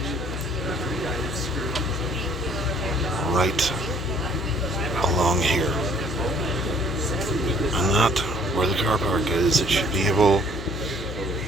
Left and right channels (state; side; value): noise; left; hum, 6 dB below the sound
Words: right along here. And not where the car park is. It should be able